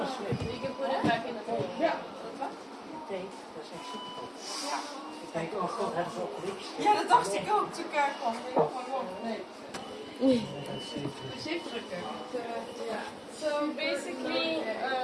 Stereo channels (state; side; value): identical; both; correlation 1.00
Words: can put it back in the bowl. Kijk, oh god, hebben ze opgericht. Ja, dat dacht ik ook. Toen ik kwam. Nee. Gezicht drukken. So basically,